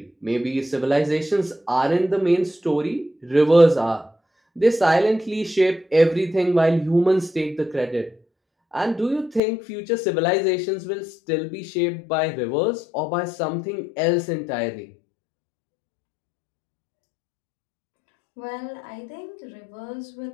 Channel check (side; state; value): right; drops out; at 9.4 s